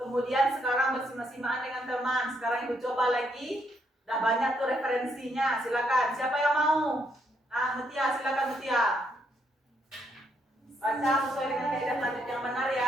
sekarang bersimak-simakan dengan teman. Sekarang Ibu coba lagi. Udah banyak tuh referensinya. Silakan. Siapa yang mau? Nah, Mutia, silakan Mutia. Baca sesuai dengan kaidah tajwid yang benar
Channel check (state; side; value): normal; both; correlation 0.75